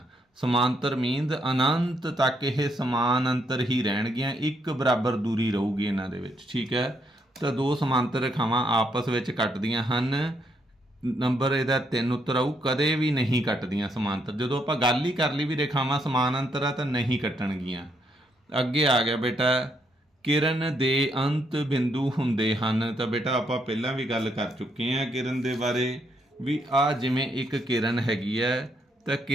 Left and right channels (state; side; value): normal; both; correlation 0.75